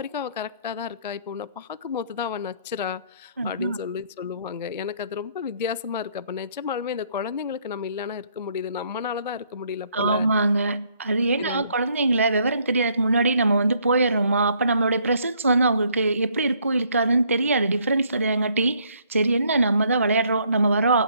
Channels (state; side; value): inverted; both; correlation -0.66